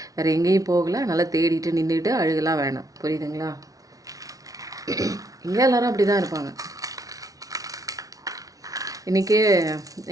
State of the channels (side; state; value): left; late; 0.18 ms